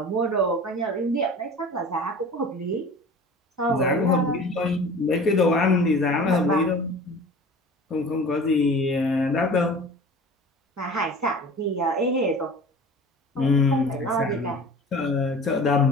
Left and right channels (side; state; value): both; normal; correlation 0.41